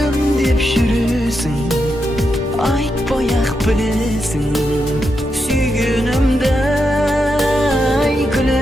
деп жүресің, айтпай-ақ білесің сүйгенімді.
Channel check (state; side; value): normal; both; correlation 0.85